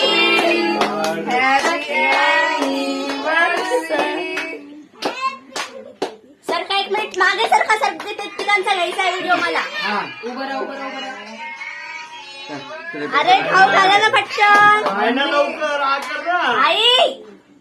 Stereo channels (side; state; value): both; identical; correlation 1.00